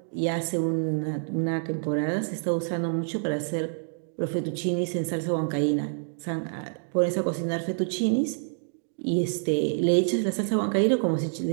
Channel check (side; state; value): left; silent; digital silence